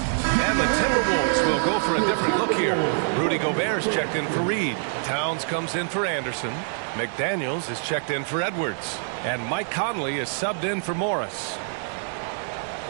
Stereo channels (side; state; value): left; silent; digital silence